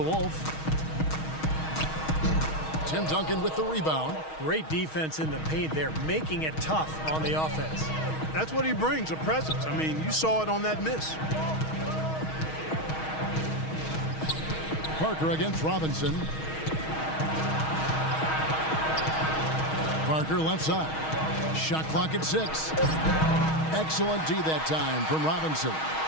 Tim Duncan with the rebound. Great defense in the paint there, making it tough on the offense. That's what he brings, a presence. I mean, you saw it on that miss. Parker against Robinson. Parker left side. Shot clock at 6. Excellent D that time from Robinson.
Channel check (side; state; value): right; late; 6.3 ms